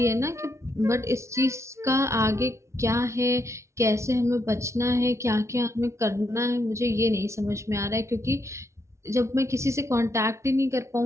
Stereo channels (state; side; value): late; left; 0.14 ms